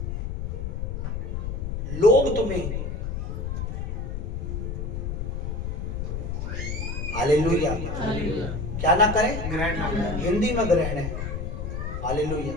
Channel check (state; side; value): noise; left; rumble, 3 dB below the sound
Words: लोग तुम्हें, हालेलुया, क्या ना करें? ग्रहण ना करें। हिंदी में ग्रहण है। Hallelujah,